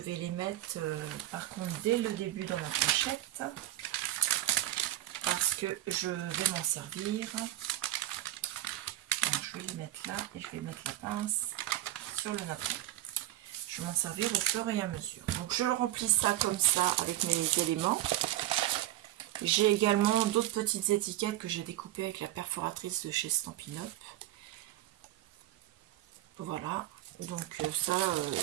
les mettre, par contre, dès le début dans ma pochette. Parce que je vais m'en servir. Donc, je vais les mettre là et je vais mettre la pince sur le napperon. Je vais m'en servir au fur et à mesure. Donc je remplis ça comme ça avec mes éléments. J'ai également d'autres petites étiquettes que j'ai découpées avec la perforatrice de chez Stampin' Up. Voilà. Donc ça,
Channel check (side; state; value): left; quieter; 14.4 dB